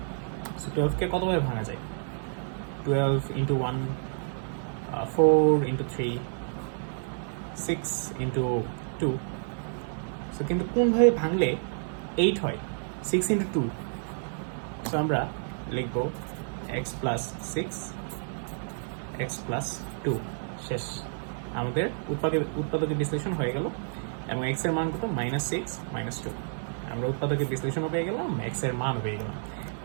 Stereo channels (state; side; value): silent; left; 58 dB below the other